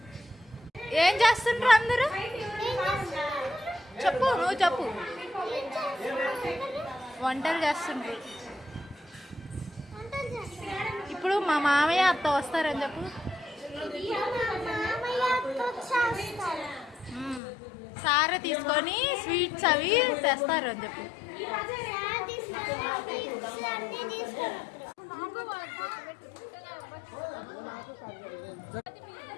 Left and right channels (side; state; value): right; drops out; at 17.4 s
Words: ఏం చేస్తుండ్రు అందరూ? చెప్పు, నువ్వు చెప్పు. వంటలు చేస్తుండ్రు. ఇప్పుడు మా మామయ్య అత్త వస్తారని చెప్పు. సారే తీసుకొని స్వీట్స్ అవి తెస్తారు అని చెప్పు.